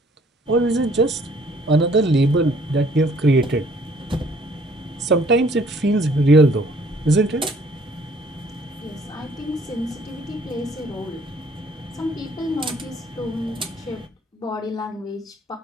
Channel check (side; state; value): both; normal; correlation 0.59